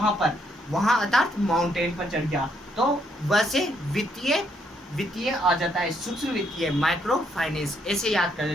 पर, वहां अर्थात माउंटेन पर चढ़ गया। तो वैसे वित्तीय आ जाता है, सूक्ष्म वित्तीय, माइक्रो फाइनेंस, ऐसे याद कर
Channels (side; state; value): both; normal; correlation 0.73